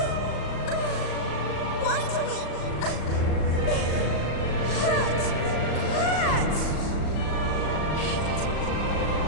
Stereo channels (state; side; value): late; right; 38 ms